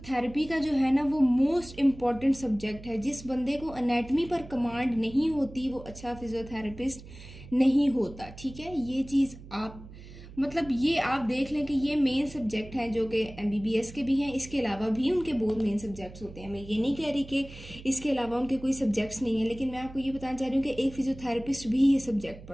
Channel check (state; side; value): noise; right; hum, 17 dB below the sound